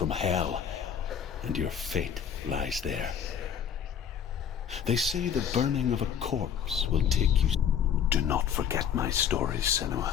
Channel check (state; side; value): quieter; right; 8.2 dB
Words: hell, and your fate lies there. They say the burning of a corpse will take you... Do not forget my stories, Senua.